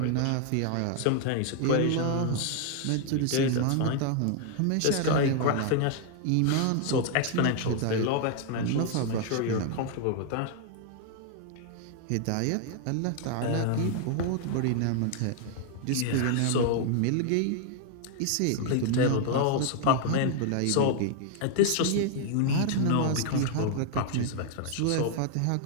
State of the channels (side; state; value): both; different; correlation 0.00